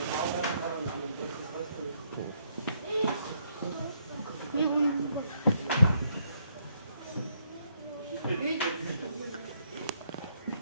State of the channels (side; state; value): both; inverted; correlation -0.72